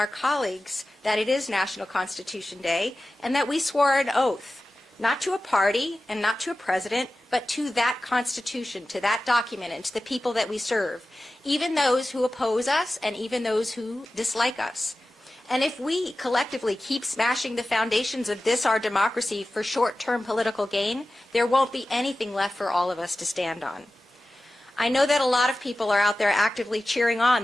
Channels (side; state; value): both; normal; correlation 0.95